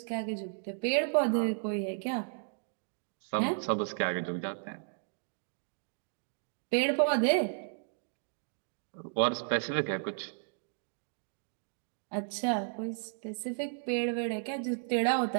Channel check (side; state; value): left; silent; digital silence